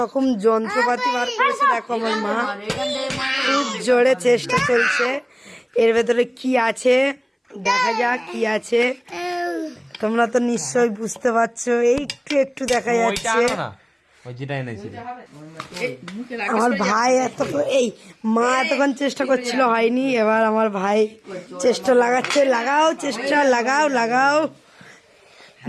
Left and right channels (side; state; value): both; identical; correlation 1.00